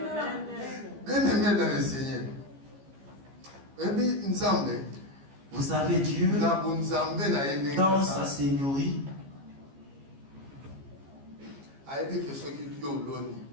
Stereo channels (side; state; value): left; late; 15 ms